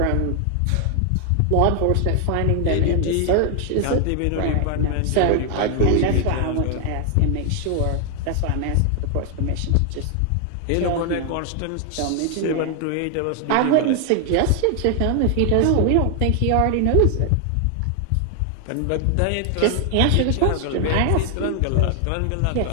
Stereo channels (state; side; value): different; both; correlation 0.00